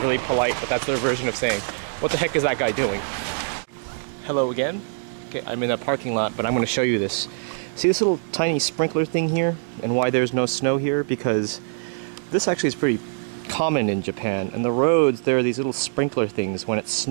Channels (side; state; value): left; silent; digital silence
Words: really polite, but that's their version of saying, what the heck is that guy doing? Hello again. Okay, I'm in a parking lot, but I'm going to show you this. See this little tiny sprinkler thing here, and why there's no snow here? Because this actually is pretty common in Japan. And the roads, there are these little sprinkler things. When it